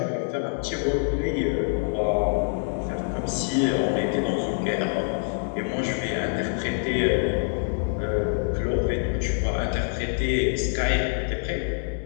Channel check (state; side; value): silent; right; digital silence